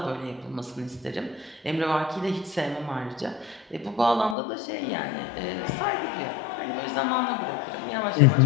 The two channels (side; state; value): right; drops out; at 4.4 s